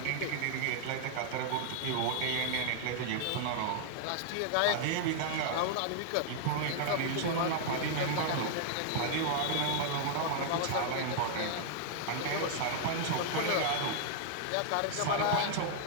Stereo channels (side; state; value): both; different; correlation -0.01